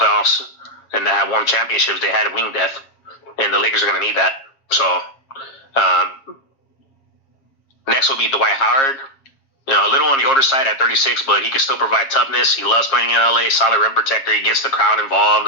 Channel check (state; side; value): late; right; 7.4 ms